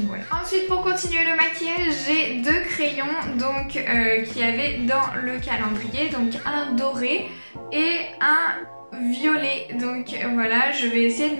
voilà. Ensuite pour continuer le maquillage, j'ai deux crayons donc qu'il y avait dans le calendrier, donc un doré et un violet. Donc voilà, je vais essayer de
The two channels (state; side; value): inverted; both; correlation -1.00